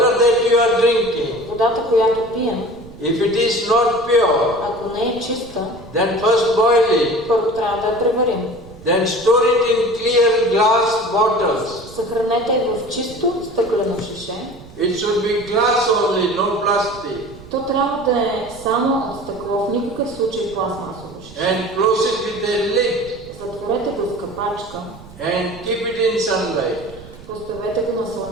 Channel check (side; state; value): right; noise; rumble, 19 dB below the sound